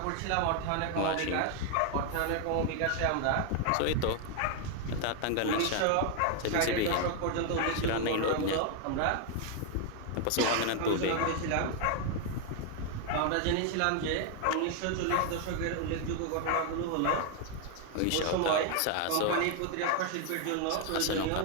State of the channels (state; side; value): different; both; correlation 0.01